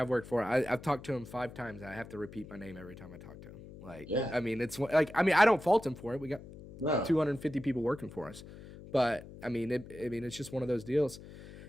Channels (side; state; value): left; noise; hum, 16 dB below the sound